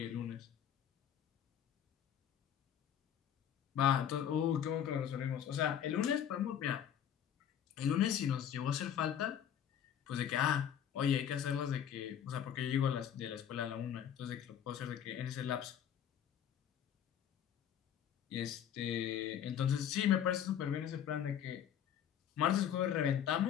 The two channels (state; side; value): quieter; right; 9.4 dB